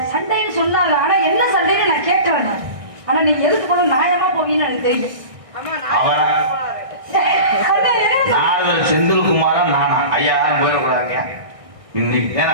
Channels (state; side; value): late; left; 1.6 ms